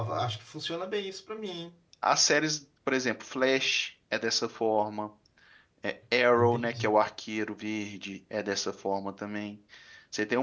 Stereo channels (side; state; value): both; identical; correlation 1.00